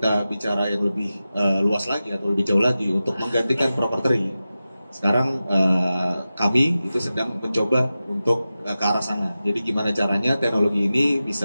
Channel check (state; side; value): inverted; both; correlation -0.94